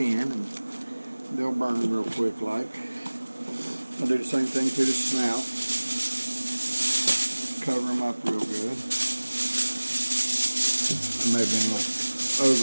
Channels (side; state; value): both; inverted; correlation -1.00